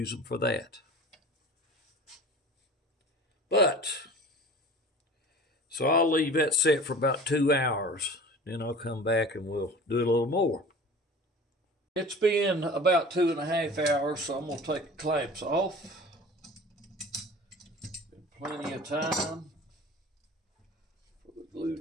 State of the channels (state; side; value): normal; both; correlation 0.40